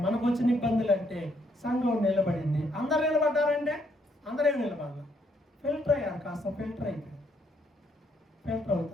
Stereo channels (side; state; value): both; normal; correlation 0.71